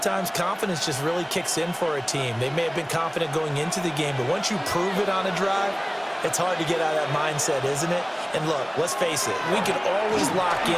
times confidence just really kicks in for a team. They may have been confident going into the game, but once you prove it on a drive, it's hard to get out of that mindset, isn't it? And look, let's face it, we can always lock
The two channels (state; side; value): identical; both; correlation 1.00